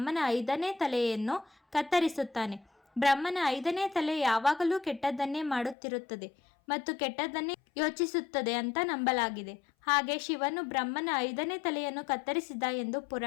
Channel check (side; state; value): right; drops out; at 5.8 s